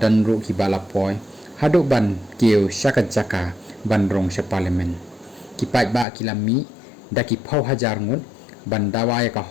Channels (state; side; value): drops out; right; at 6.1 s